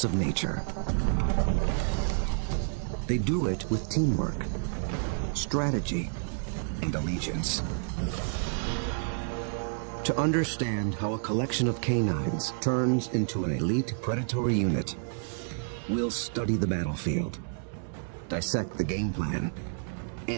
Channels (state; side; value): silent; left; 58 dB below the other